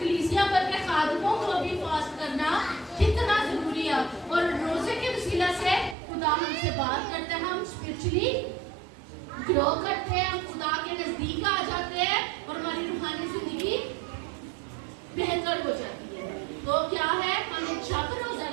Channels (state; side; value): drops out; left; at 6.0 s